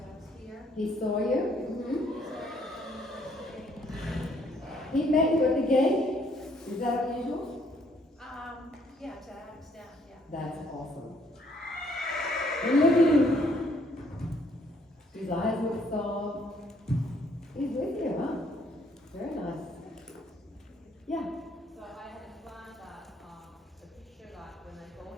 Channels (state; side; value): normal; both; correlation 0.66